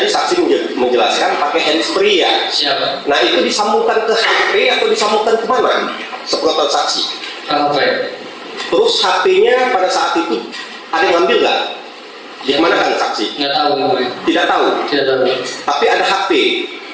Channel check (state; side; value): identical; both; correlation 1.00